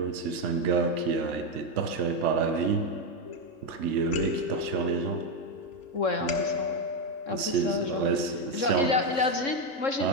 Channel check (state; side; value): late; right; 3.7 ms